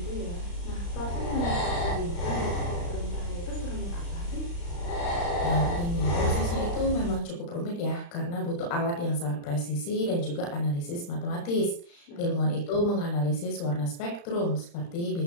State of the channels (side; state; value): right; late; 35 ms